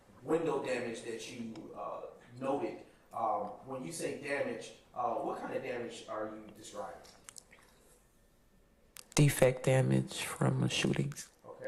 window damage that you noted, when you say damage, what kind of damage are you describing? Defect damage from shootings.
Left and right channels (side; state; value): both; identical; correlation 1.00